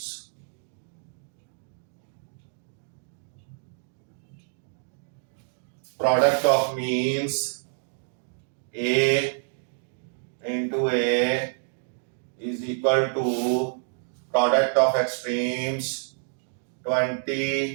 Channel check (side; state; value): left; silent; digital silence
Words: Product of means A into A is equal to product of extremes